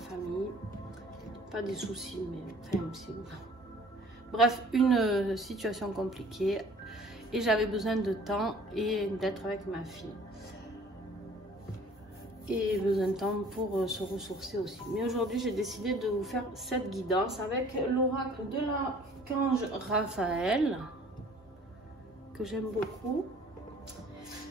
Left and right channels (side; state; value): both; normal; correlation 0.52